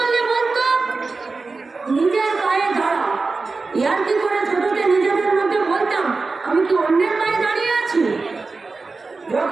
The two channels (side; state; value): left; quieter; 4.0 dB